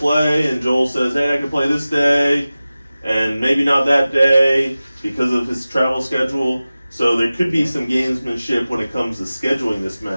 and Joel says, hey, I can play this day, and maybe not that day because of his travel schedule. So there could be some gamesmanship when it comes to scheduling this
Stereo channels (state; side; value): inverted; both; correlation -0.97